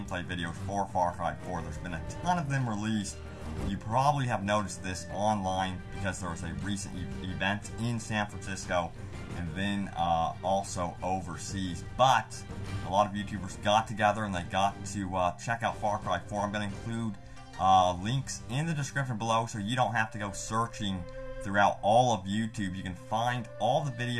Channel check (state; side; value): identical; both; correlation 1.00